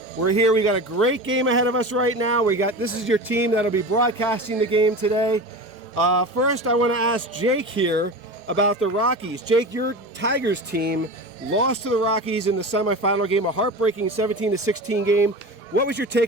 We're here, we got a great game ahead of us right now. This is your team that'll be broadcasting the game today. First I want to ask Jake here about the Rockies. Jake, your Tigers team lost to the Rockies in the semifinal game, a heartbreaking 17-16 game. What was your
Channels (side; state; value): left; late; 4.8 ms